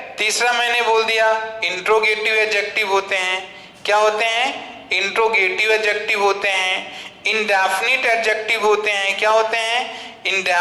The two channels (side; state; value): both; identical; correlation 1.00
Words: तीसरा मैंने बोल दिया इंट्रोगेटिव एडजेक्टिव होते हैं, क्या होते हैं, इंट्रोगेटिव एडजेक्टिव होते हैं। इंडेफिनिट एडजेक्टिव होते हैं, क्या होते हैं,